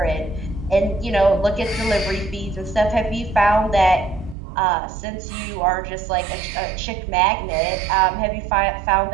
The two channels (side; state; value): left; drops out; at 4.4 s